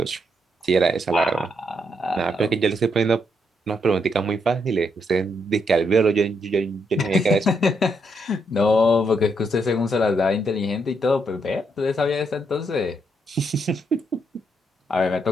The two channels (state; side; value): normal; both; correlation 0.77